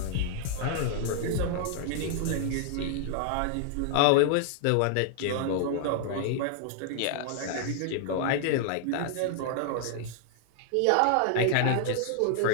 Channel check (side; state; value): both; different; correlation 0.00